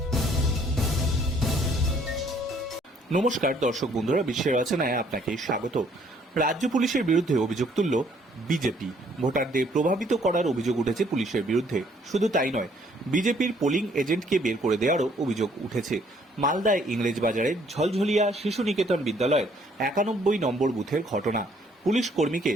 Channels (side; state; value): both; normal; correlation 0.63